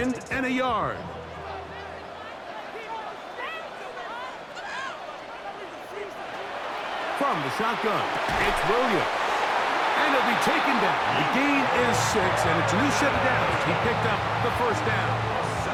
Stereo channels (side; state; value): both; identical; correlation 1.00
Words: and a yard. From the shotgun, it's Williams. And he'll be taken down. The gain is 6, and it's a new set of downs. He picked up the first down.